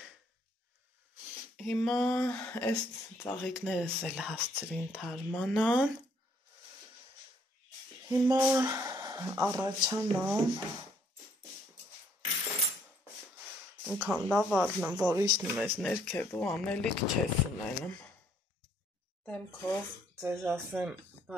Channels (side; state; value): both; normal; correlation 0.66